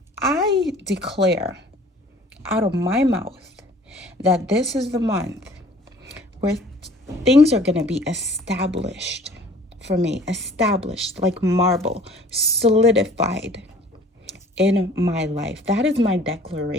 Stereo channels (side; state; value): both; normal; correlation 0.51